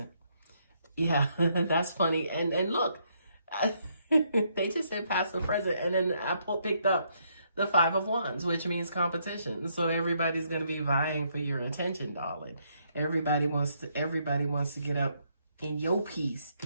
Yeah, that's funny. And look, they just said past and present. And then I picked up the 5 of Wands, which means competition. So everybody's going to be vying for your attention, darling. Everybody wants to get up in your piece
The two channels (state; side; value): inverted; both; correlation -0.73